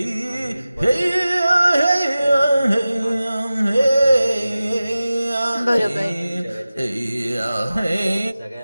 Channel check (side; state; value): both; inverted; correlation -0.96